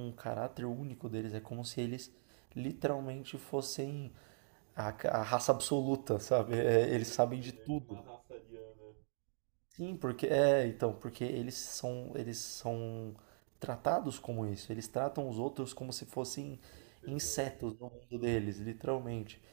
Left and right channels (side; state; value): left; silent; digital silence